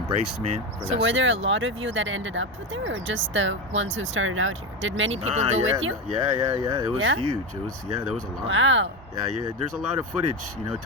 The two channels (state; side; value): normal; both; correlation 0.17